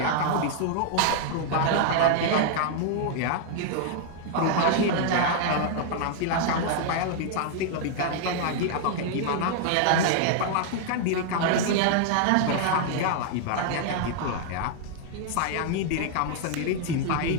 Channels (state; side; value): different; both; correlation 0.00